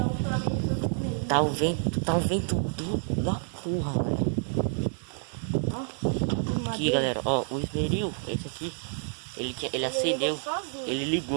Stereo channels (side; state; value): left; silent; 59 dB below the other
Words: Tá um vento da porra, velho. Aqui, galera, ó, o esmeril, esse aqui, ele acendeu, ele